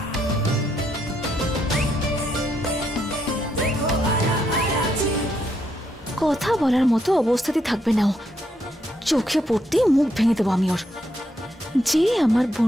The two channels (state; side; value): normal; both; correlation 0.77